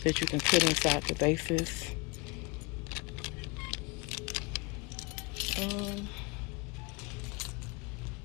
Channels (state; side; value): quieter; right; 28.8 dB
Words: that you can put inside the vases.